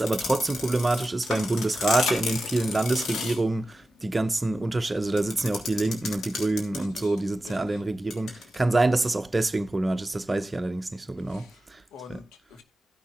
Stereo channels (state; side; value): normal; both; correlation 0.93